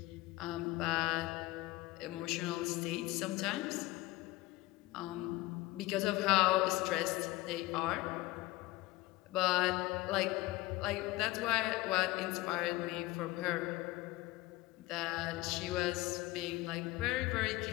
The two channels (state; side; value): quieter; right; 19.4 dB